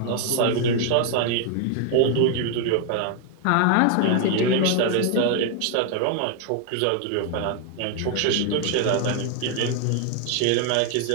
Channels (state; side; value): different; both; correlation 0.00